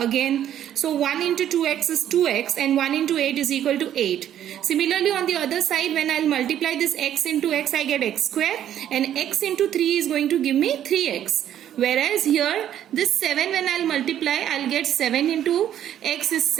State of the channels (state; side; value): quieter; left; 10.8 dB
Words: again. So 1 into 2x is 2x and 1 into 8 is equal to 8. Similarly on the other side, when I'll multiply this x into x, I get x square, and x into 3 is going to give me 3x. Whereas here this 7 when I'll multiply, I'll get 7 into x is